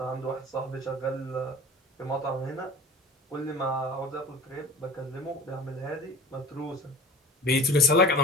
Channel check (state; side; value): normal; both; correlation 0.39